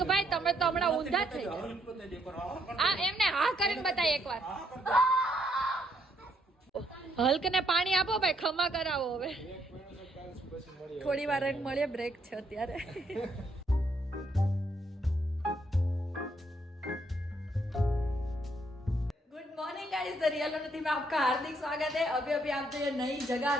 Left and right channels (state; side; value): normal; both; correlation 0.72